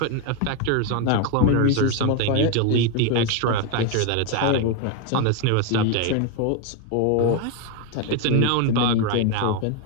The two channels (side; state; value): both; different; correlation 0.02